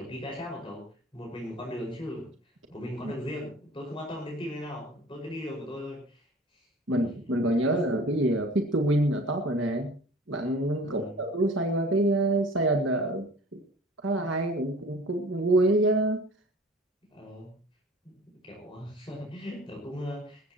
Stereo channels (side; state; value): both; normal; correlation 0.45